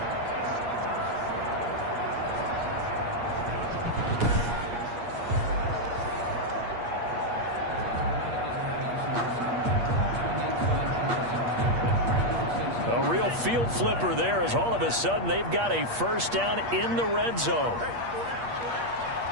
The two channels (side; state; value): left; late; 8.5 ms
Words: Field flipper there as all of a sudden they've got a first down in the red zone.